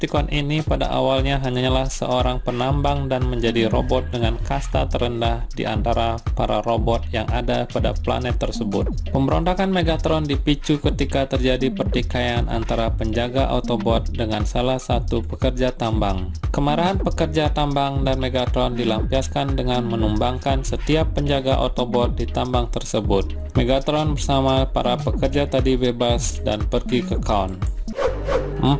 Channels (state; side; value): identical; both; correlation 1.00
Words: ini pada awalnya hanyalah seorang penambang dan menjadi robot dengan kasta terendah di antara para robot yang ada pada planet tersebut. Pemberontakan Megatron dipicu ketika terjadi pertikaian antara penjaga Autobot dengan salah satu pekerja tambang. Kemarahan pekerja tambang dan Megatron dilampiaskan dengan menumbangkan setiap penjaga Autobot di tambang tersebut. Megatron bersama para pekerja tadi bebas dan pergi ke Kaon.